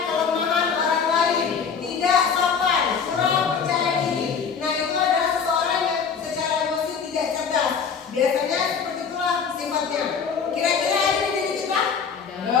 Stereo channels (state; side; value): quieter; right; 6.3 dB